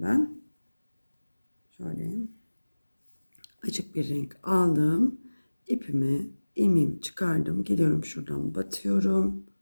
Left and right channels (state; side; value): inverted; both; correlation -1.00